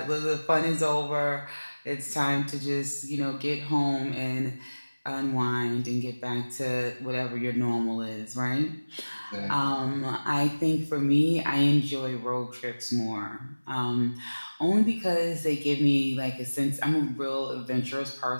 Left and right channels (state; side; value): inverted; both; correlation -1.00